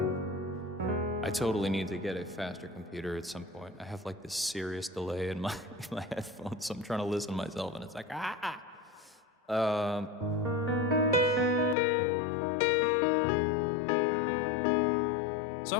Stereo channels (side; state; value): right; drops out; at 11.8 s